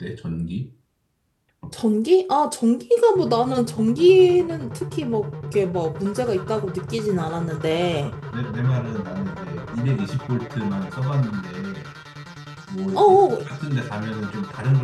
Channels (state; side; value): identical; both; correlation 1.00